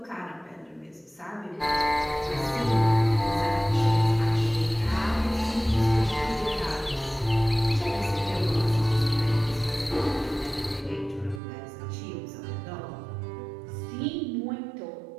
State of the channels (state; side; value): drops out; left; at 11.4 s